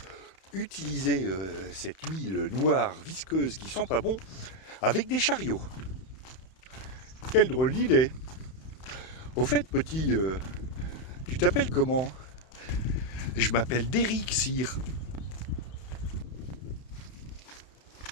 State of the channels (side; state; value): right; late; 31 ms